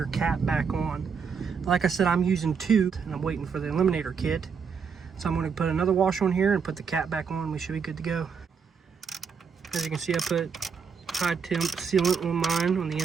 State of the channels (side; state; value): left; quieter; 6.1 dB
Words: cap back on. Like I said, I'm using 2 and I'm waiting for the eliminator kit. So I'm going to put another washer on here and put the cap back on. We should be good to go. As you can see, I put high temp sealant on mine on the